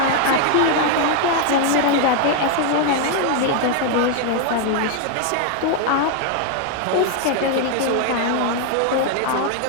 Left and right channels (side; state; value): both; different; correlation 0.00